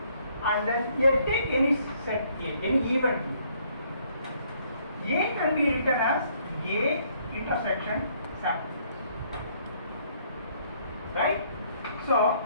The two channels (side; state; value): both; inverted; correlation -0.65